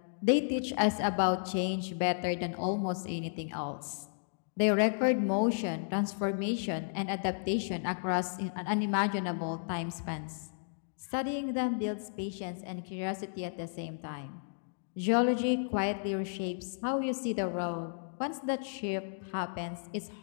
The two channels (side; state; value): right; silent; digital silence